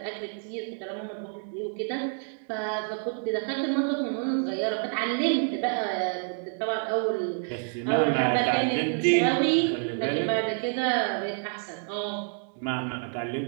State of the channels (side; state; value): left; silent; 56 dB below the other